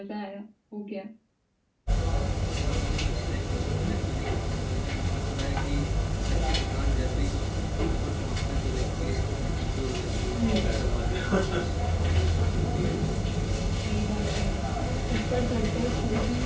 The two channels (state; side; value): identical; both; correlation 1.00